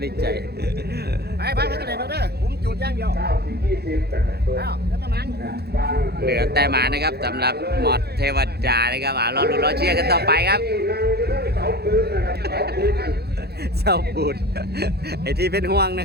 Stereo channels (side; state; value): left; late; 0.47 ms